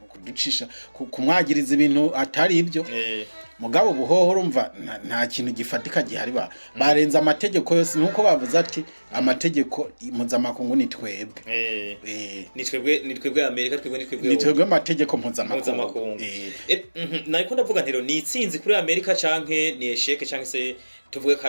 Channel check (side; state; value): both; inverted; correlation -1.00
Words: kuducisha kumwagiriza ibintu atari ibyo mugabo buhoho urumva nta kintu gifatika gihari barenza amategeko yose nuko bavuze ati amategeko mpuzamakungu ni twebwe ni twebwe Amerika ni twebwe amategeko mpuzamakungu nariko ndavuga ntero ni itsinzi kuri Amerika canke ni esheke canke se tuvuge